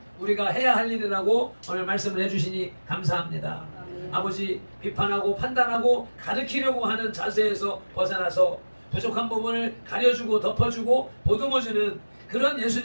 우리가 해야 할 일이라고 오늘 말씀을 해주시니 감사합니다. 아버지, 비판하고 판단하고 가르치려고 하는 자세에서 벗어나서 부족한 부분을 가려주고 덮어주고 보듬어주는 그런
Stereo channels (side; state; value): both; inverted; correlation -1.00